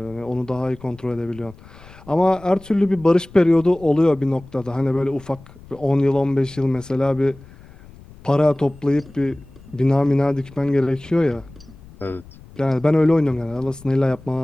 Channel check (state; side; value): noise; left; rumble, 21 dB below the sound